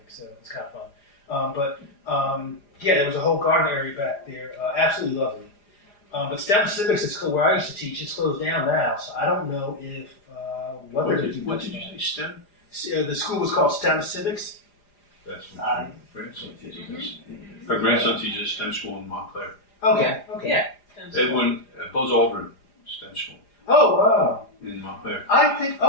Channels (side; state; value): right; late; 4.9 ms